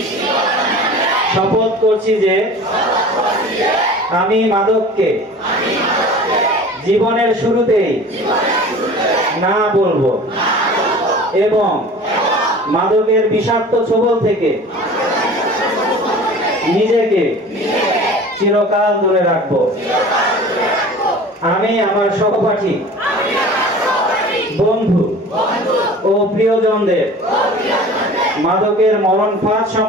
শপথ করছি যে আমি মাদককে জীবনের শুরুতেই না বলবো এবং মাদকের বিষাক্ত ছোবল থেকে নিজেকে চিরকাল দূরে রাখবো। আমি আমার সহপাঠী, বন্ধু ও প্রিয়জনদের মাদকের মরণ ফাঁদ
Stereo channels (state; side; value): normal; both; correlation 0.41